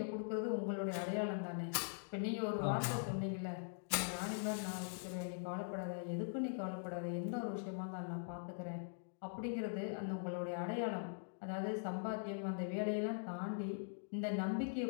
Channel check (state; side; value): silent; right; digital silence